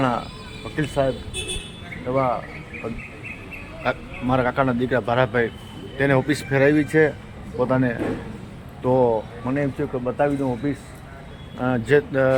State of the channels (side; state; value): both; identical; correlation 1.00